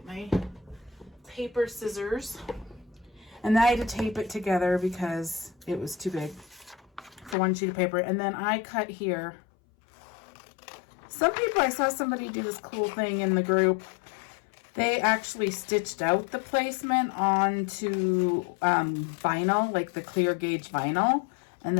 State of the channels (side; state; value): right; drops out; at 7.4 s